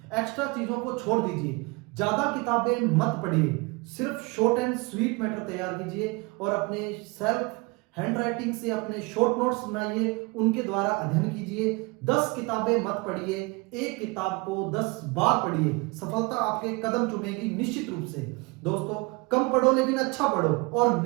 एक्स्ट्रा चीजों को छोड़ दीजिए, ज्यादा किताबें मत पढ़िए, सिर्फ शॉर्ट एंड स्वीट मैटर तैयार कीजिए, और अपने सेल्फ हैंड राइटिंग से अपने शॉर्ट नोट्स बनाइए, उनके द्वारा अध्ययन कीजिए। 10 किताबें मत पढ़िए, एक किताब को 10 बार पढ़िए, सफलता आपके कदम चूमेगी निश्चित रूप से। दोस्तों, कम पढ़ो लेकिन अच्छा पढ़ो, और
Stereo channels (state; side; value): quieter; left; 27.2 dB